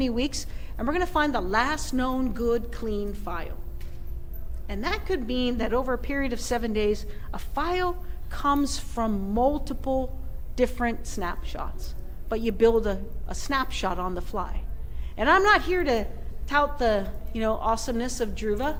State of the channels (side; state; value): both; identical; correlation 1.00